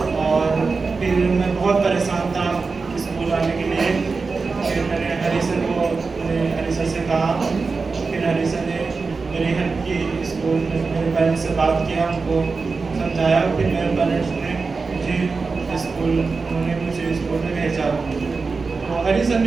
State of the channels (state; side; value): quieter; left; 4.4 dB